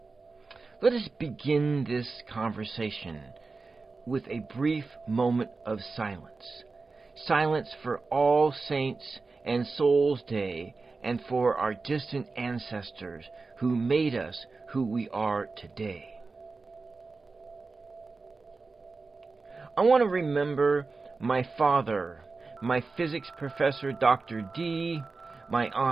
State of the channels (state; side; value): quieter; left; 4.0 dB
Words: Let us begin this conversation with a brief moment of silence. Silence for All Saints and Souls Day and for our distant ancestors who made us who we are today. I want to remember my father, my physics professor Dr. D, my